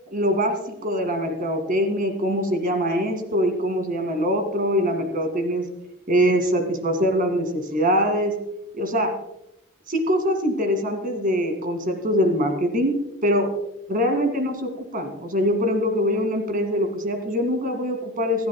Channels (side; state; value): both; normal; correlation 0.30